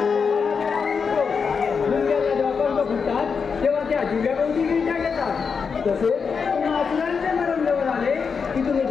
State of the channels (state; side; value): quieter; right; 5.7 dB